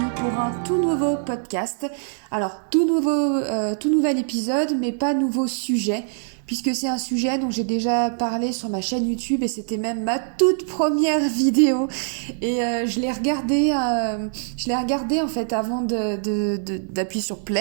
pour un tout nouveau podcast. Alors, tout nouvel épisode, mais pas nouveau sujet, puisque c'est un sujet dont j'ai déjà parlé sur ma chaîne YouTube et c'était même ma toute première vidéo. Et je l'ai regardé en fait avant d'appuyer sur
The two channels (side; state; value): left; silent; digital silence